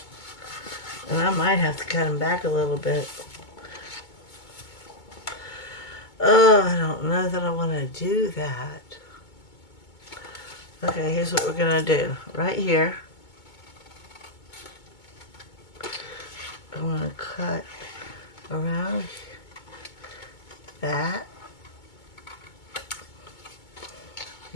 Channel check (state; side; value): late; right; 2.2 ms